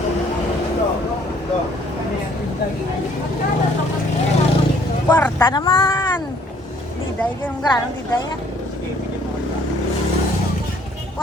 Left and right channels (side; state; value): both; normal; correlation 0.61